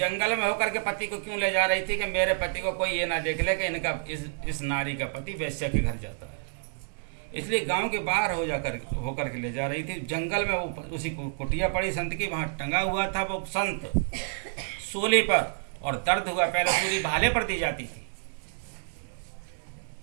में होकर के पति को क्यों ले जा रही थी कि मेरे पति को कोई ये ना देख ले कि इनका इस नारी का पति वैश्य के घर जाता है, इसलिए गांव के बाहर होकर के ले जा रही थी। जंगल में वो उसी कुटिया पड़ी संत की, वहां टंगा हुआ था वो संत सूली पर, और दर्द हुआ। पहले सूली भाले पर दी जाती थी।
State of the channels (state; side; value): silent; left; digital silence